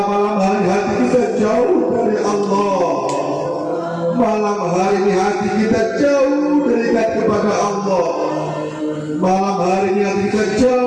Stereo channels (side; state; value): both; identical; correlation 1.00